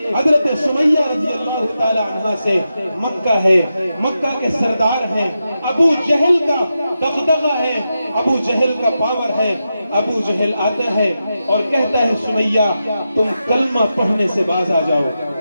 حضرت سمیہ رضی اللہ تعالی عنہ سے۔ مکہ ہے، مکہ کے سردار ہیں، ابو جہل کا دغدغہ ہے، ابو جہل کا پاور ہے۔ ابو جہل آتا ہے اور کہتا ہے سمیہ تم کلمہ پڑھنے سے باز آ جاؤ،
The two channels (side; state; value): both; inverted; correlation -0.89